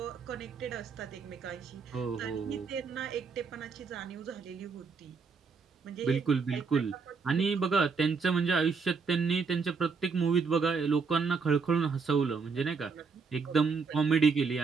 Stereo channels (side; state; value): left; quieter; 5.1 dB